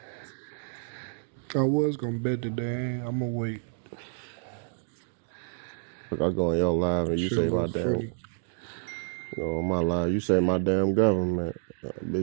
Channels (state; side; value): silent; left; digital silence